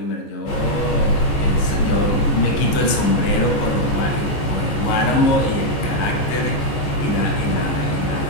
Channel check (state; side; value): late; right; 14 ms